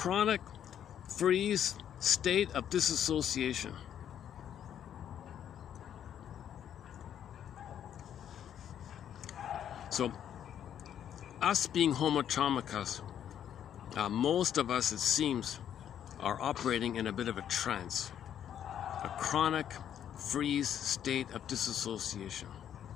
freeze state of disassociation. So, us being Homo traumacus, most of us, it seems, are operating in a bit of a trance, a chronic freeze state of disassociation.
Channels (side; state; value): right; quieter; 9.7 dB